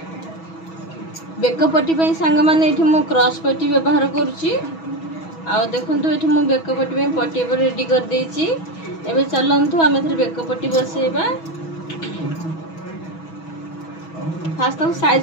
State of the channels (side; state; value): right; late; 6.2 ms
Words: बेकपट्टी सांग मैंने क्रॉस पट्टी व्यवहार करुच्ची आ देखो ये मुझे बेकपट्टी पट्टी रेडी कर देची एबे चलंतु आम बेकपट्टी बसेबा फास्ट